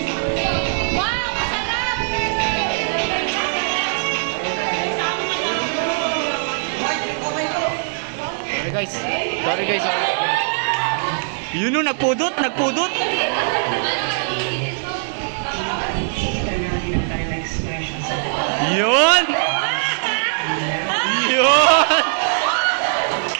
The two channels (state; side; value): silent; left; digital silence